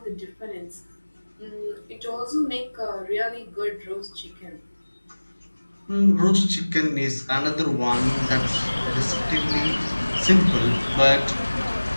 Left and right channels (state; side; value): inverted; both; correlation -1.00